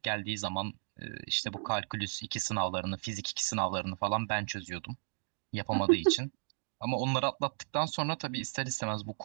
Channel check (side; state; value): left; silent; digital silence